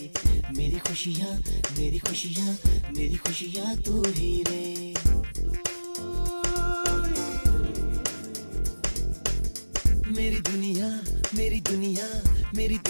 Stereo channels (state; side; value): inverted; both; correlation -1.00